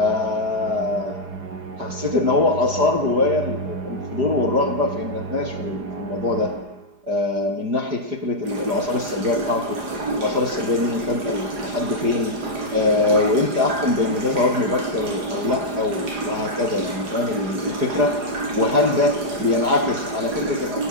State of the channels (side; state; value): left; late; 4.9 ms